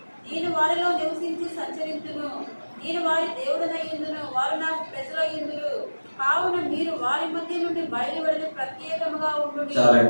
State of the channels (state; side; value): inverted; both; correlation -1.00